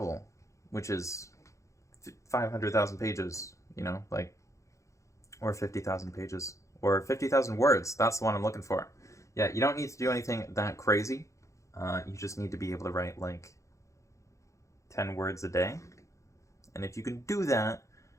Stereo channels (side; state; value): right; late; 0.15 ms